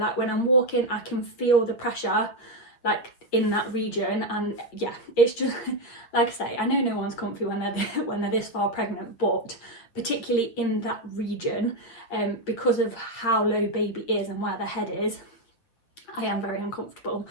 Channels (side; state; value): right; late; 8.5 ms